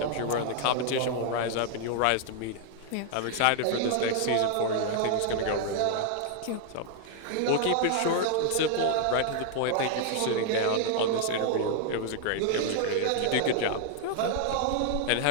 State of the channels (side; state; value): both; different; correlation 0.00